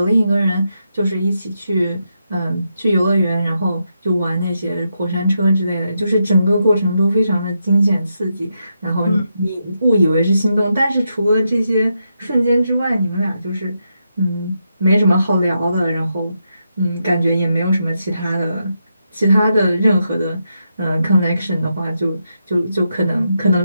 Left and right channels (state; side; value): inverted; both; correlation -0.83